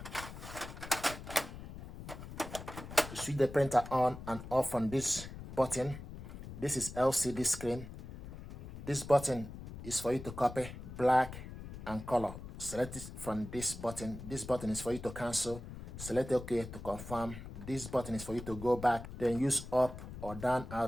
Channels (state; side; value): noise; left; rumble, 11 dB below the sound